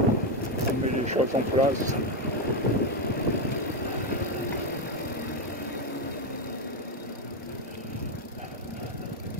On met les choses en place.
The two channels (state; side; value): normal; both; correlation 0.07